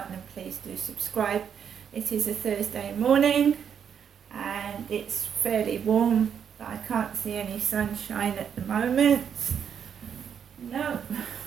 and please do subscribe. It is a Thursday morning and it's fairly warm, but I can't see any sunshine at the moment. No,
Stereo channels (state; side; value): quieter; left; 7.9 dB